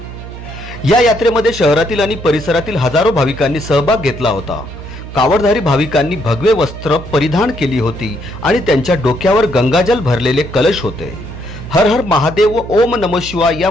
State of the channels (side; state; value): right; noise; hum, 12 dB below the sound